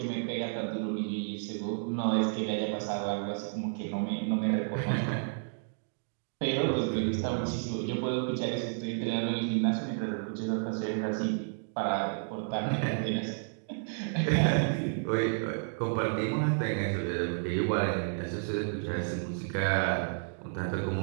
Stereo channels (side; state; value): left; silent; digital silence